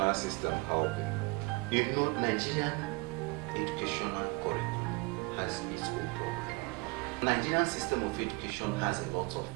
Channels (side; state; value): left; quieter; 27.9 dB